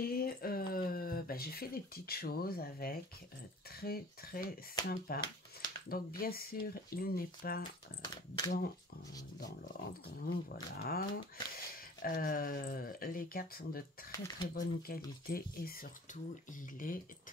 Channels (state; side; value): normal; both; correlation 0.46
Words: j'ai fait des petites choses avec, très sympa. Donc bien sûr, il n'est pas dans l'ordre, voilà. Les cartes sont de très bonne qualité et surtout, il est